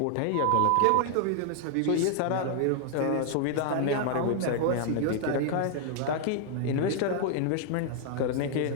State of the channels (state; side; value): different; both; correlation 0.00